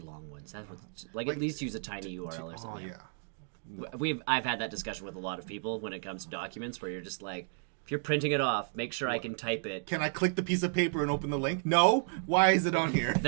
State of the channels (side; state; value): left; silent; digital silence